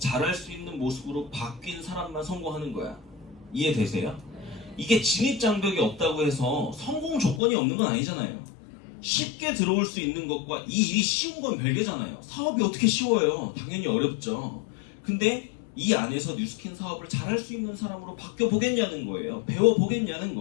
수 있는 모습으로 바뀐 사람만 성공하는 거야. 이해되세요? 이게 진입장벽이 없다고 해서 성공 조건이 없는 건 아니잖아요. 쉽게 들어올 수 있는 것과 이 일이 쉬운 건 별개잖아요. 사업이 어떻게 쉬워요? 당연히 어렵죠. 근데 이 안에서 뉴스킨 사업을 잘할 수 있는 사람으로 바뀌어 보겠냐는 거예요. 배워 보겠냐는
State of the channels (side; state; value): right; drops out; at 7.4 s